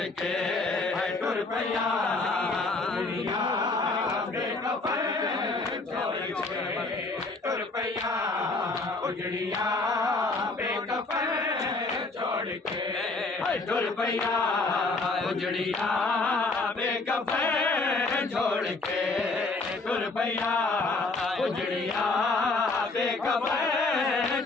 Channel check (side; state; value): right; quieter; 3.5 dB